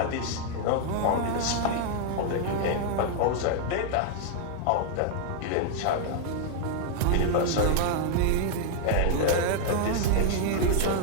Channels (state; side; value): different; both; correlation 0.00